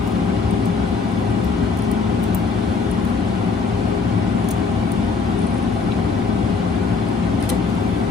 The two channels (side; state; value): right; quieter; 4.7 dB